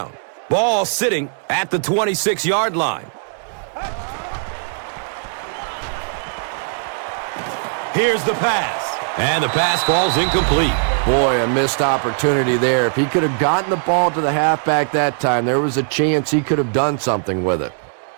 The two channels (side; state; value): left; silent; 66 dB below the other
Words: Ball sitting at the 26-yard line. Here's the pass. And the pass falls incomplete. Boy, a missed opportunity there. If he could have gotten the ball to the halfback that time, there was a chance he could have done something with it.